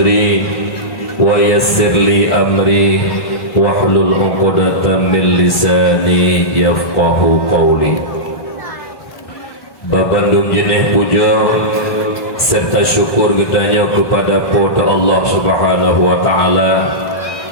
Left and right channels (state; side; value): late; right; 1.3 ms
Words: ويسر لي أمري واحلل عقدة من لساني يفقه قولي. Babandung jeneh puja serta syukur getanya kepada pada Allah Subhanahu wa taala,